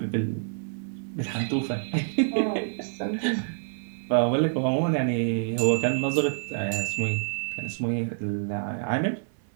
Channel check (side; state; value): left; silent; 60 dB below the other